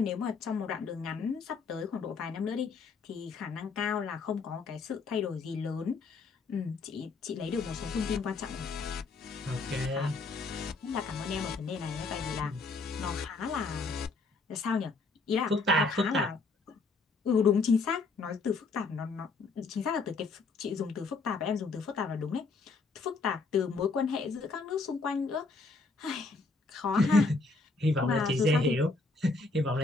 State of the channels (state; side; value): quieter; right; 3.8 dB